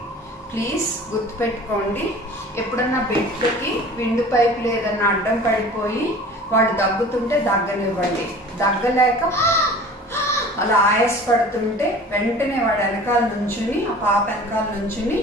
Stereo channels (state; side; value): normal; both; correlation 0.43